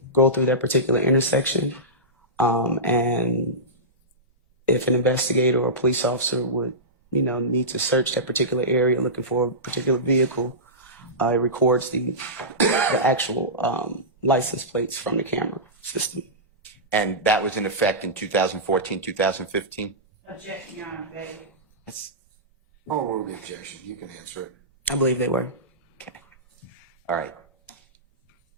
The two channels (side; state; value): both; normal; correlation -0.17